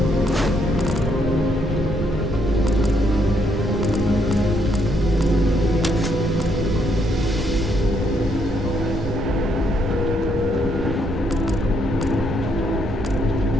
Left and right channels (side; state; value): both; normal; correlation 0.73